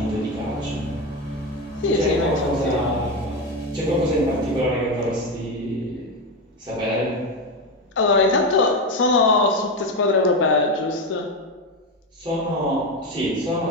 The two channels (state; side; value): normal; both; correlation 0.14